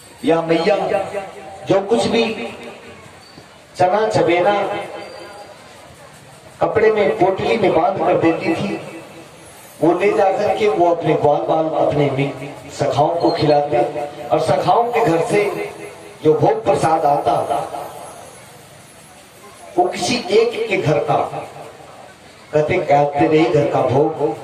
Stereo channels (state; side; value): identical; both; correlation 1.00